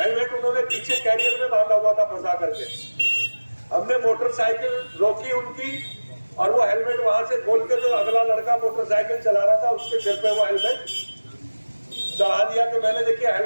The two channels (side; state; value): both; inverted; correlation -1.00